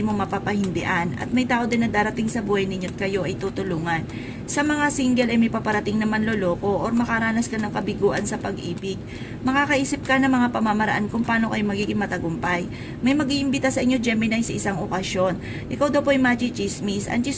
mo mapapahindian at may tao din na darating sa buhay ninyo at kayo ay tutulungan. Sa mga single ay may paparating na manloloko or makaranas ka ng kabiguan sa pag-ibig. Makakaisip ka ng mga pamamaraan kung paano kayo magiging matagumpay. May mag-iimbita sa inyo Gemini sa isang okasyon. Ikaw daw po ay machichismis. Ang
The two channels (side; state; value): both; identical; correlation 1.00